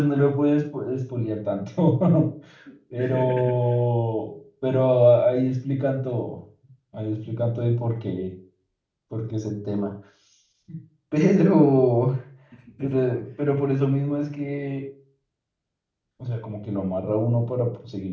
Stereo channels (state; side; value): identical; both; correlation 1.00